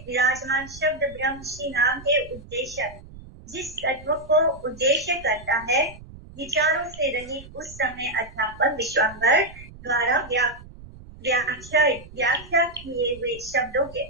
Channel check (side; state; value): right; noise; rumble, 18 dB below the sound